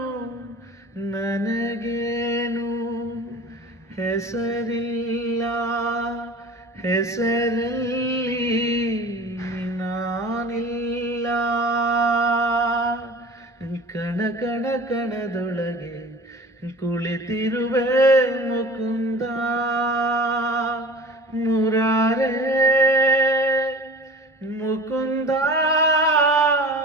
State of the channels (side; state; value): both; normal; correlation 0.40